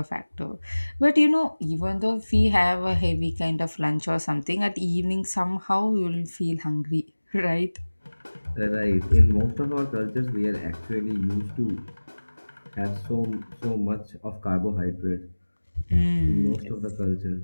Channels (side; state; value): both; inverted; correlation -1.00